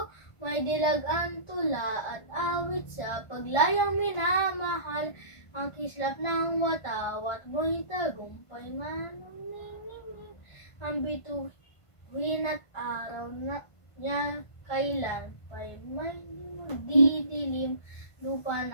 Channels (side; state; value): right; late; 1.5 ms